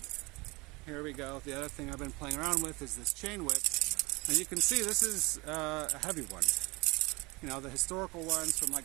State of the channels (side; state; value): left; quieter; 24.7 dB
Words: Here we go. The other thing I've been playing around with is this chain whip, and you can see this is a heavy one. You know, the historical ones from